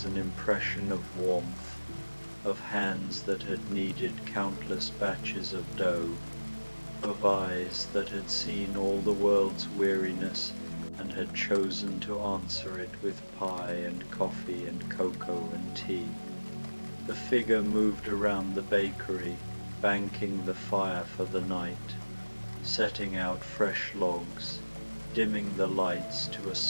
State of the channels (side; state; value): both; inverted; correlation -1.00